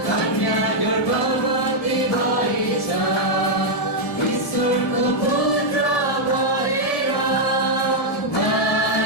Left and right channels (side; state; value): right; late; 1.7 ms